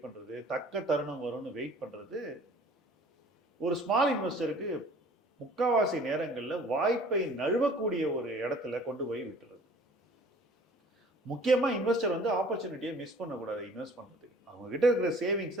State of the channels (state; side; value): normal; both; correlation 0.50